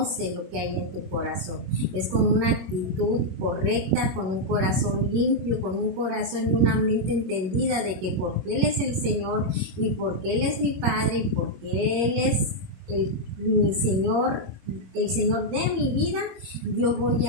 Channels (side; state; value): left; late; 21 ms